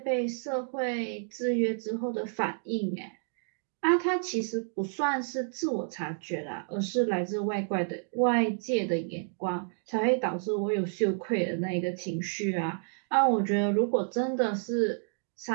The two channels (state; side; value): silent; left; digital silence